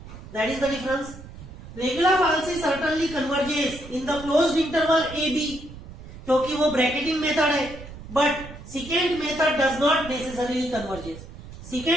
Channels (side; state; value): right; noise; rumble, 15 dB below the sound